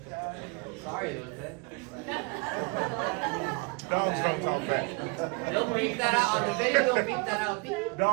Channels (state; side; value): quieter; left; 30.2 dB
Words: Sorry, was it? Dogs don't talk back. They'll beep that out, on the video they'll beep that out. Beep.